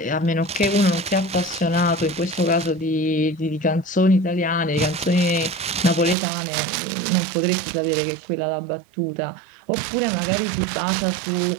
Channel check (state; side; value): drops out; left; at 6.2 s